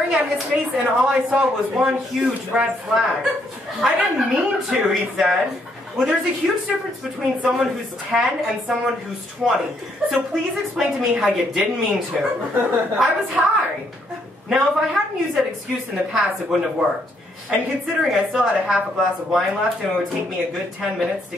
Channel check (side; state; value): both; normal; correlation 0.72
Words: at his face, and all I saw was one huge red flag. I didn't mean to, he said. Well, there's a huge difference between someone who's 10 and someone who's 20. So please explain to me how you didn't mean to. I was high. Now, if I hadn't used that excuse in the past, it wouldn't have worked. And considering I still had a half a glass of wine left and it would take me a good 10 minutes to